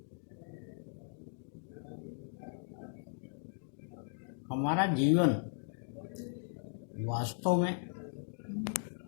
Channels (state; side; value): silent; right; digital silence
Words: हमारा जीवन वास्तव में